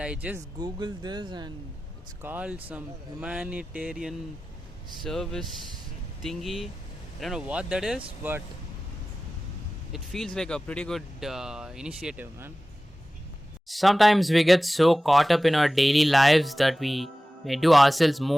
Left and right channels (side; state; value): both; normal; correlation 0.96